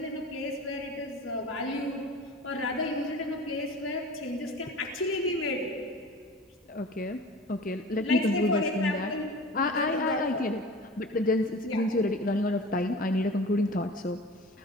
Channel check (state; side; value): normal; both; correlation 0.38